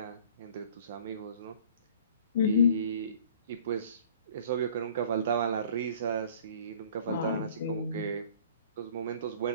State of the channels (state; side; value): inverted; both; correlation -0.50